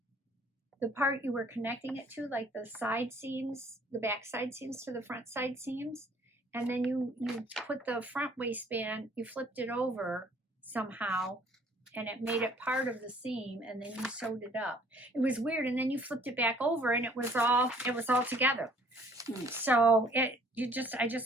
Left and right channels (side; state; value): both; normal; correlation 0.58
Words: part you were connecting it to, like the side seams, the back side seams to the front side seams. And then you put the front waistband, you flipped it over somehow, and it made it part of the seam, and then you sewed it up. It was weird, and then you flipped it back over, and it was all together. So I